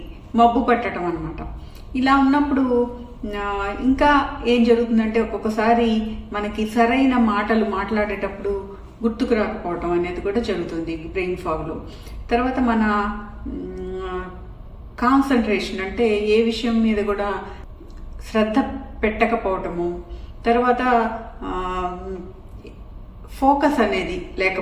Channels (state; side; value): identical; both; correlation 1.00